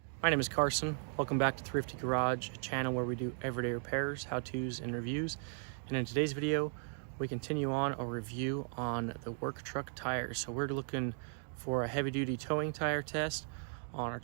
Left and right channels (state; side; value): silent; left; 53 dB below the other